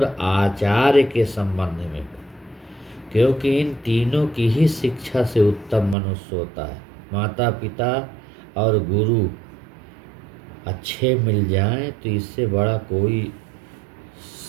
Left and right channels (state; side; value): drops out; left; at 6.0 s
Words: आचार्य के संबंध में हो, क्योंकि इन तीनों की ही शिक्षा से उत्तम मनुष्य होता है। माता पिता और गुरु अच्छे मिल जाएं तो इससे बड़ा कोई